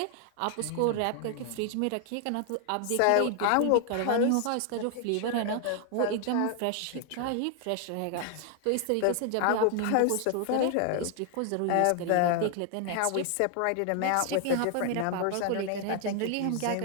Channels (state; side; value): different; both; correlation 0.00